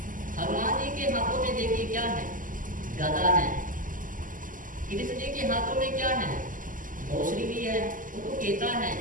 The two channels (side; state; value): left; late; 0.39 ms